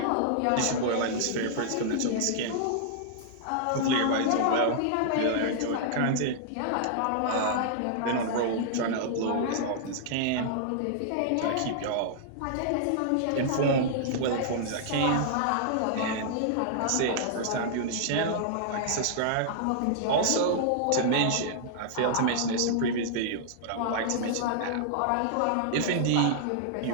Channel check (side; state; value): both; different; correlation -0.01